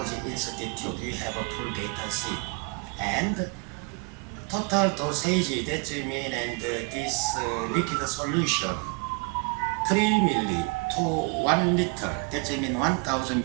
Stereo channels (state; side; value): quieter; left; 31.8 dB